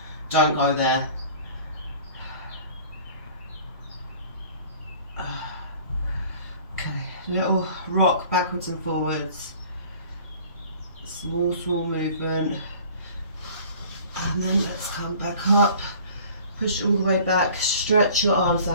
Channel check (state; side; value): inverted; both; correlation -0.48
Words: don't go there. Okay, little rock backwards and forwards. Small, small movement. And then let's come back up, push all the way back, stretch your arms